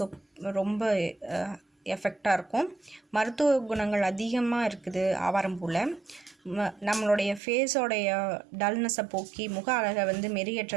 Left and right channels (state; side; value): drops out; left; at 7.4 s